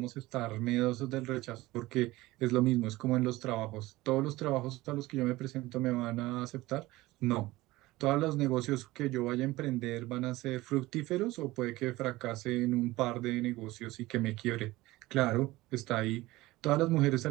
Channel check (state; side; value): quieter; left; 18.9 dB